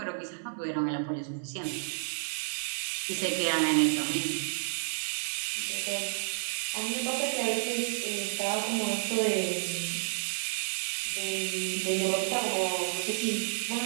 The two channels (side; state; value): left; silent; 57 dB below the other